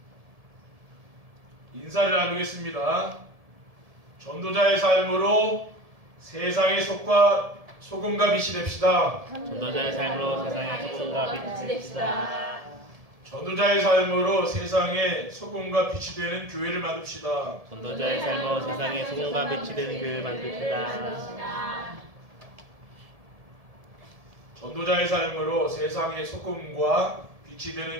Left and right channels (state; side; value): late; left; 1.7 ms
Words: 인사를 나누겠습니다. 전도자의 삶으로 세상의 소금과 빛이 됩시다. 전도자의 삶으로 세상의 소금과 빛이 됩시다. 전도자의 삶으로 세상의 소금과 빛이 되는 교회를 만듭시다. 전도자의 삶으로 세상의 소금과 빛이 되는 교회를 만듭시다. 전도자의 삶으로 세상의 소금과 빛이 되는